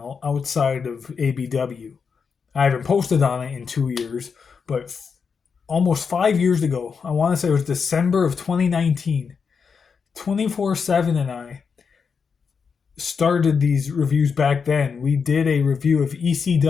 outside of ABW. I haven't posted on it in 2 years, but almost 5 years ago, I want to say it was December of 2019, 24/7 and I started these reviews back then. We did a review of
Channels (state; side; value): quieter; right; 5.9 dB